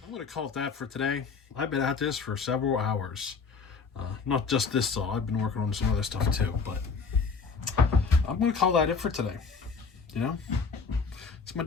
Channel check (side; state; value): right; quieter; 5.1 dB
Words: I'm going to call it that for today. I've been at this for several hours. Not just this saw. I've been working on some other stuff too, but I'm going to call that it for today. You know, it's my